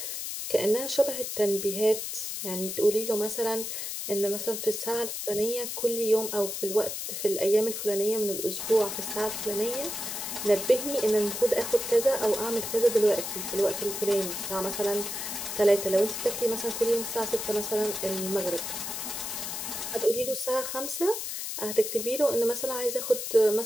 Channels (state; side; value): noise; left; hiss, 5 dB below the sound